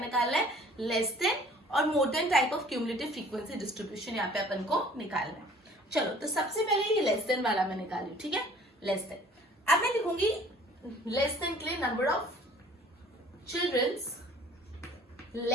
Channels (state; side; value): normal; both; correlation 0.52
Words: है? लेस देन और more than type of cumulative frequency distribution यहाँ पे अपन को निकालना है. चलो, तो सबसे पहले ये लेस देन वाला मैं निकाली. ठीक है, लेस देन. अब मैं लिखूंगी लेस देन के लिए number of childrens